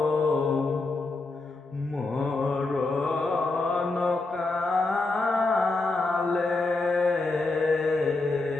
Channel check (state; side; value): quieter; right; 3.3 dB